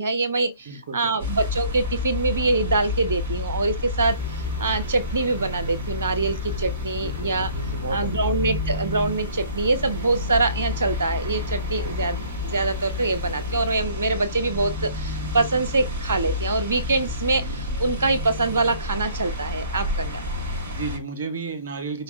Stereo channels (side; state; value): both; inverted; correlation -0.56